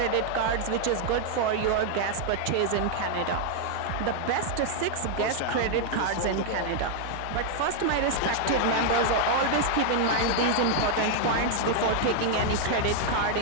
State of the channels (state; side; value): different; both; correlation 0.00